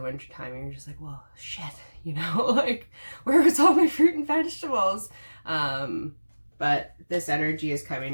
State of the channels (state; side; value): inverted; both; correlation -1.00